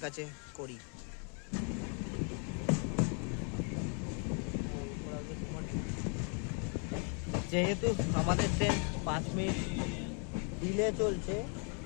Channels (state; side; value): quieter; right; 39.6 dB